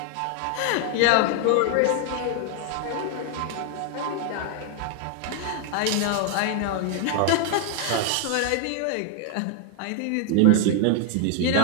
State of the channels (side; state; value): both; different; correlation 0.00